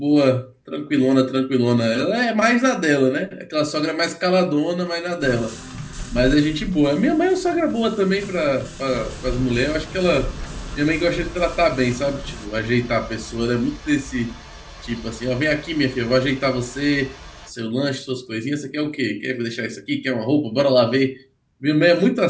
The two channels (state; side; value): identical; both; correlation 1.00